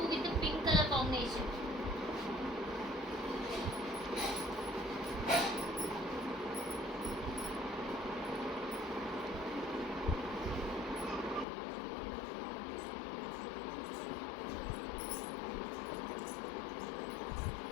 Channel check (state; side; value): drops out; right; at 11.5 s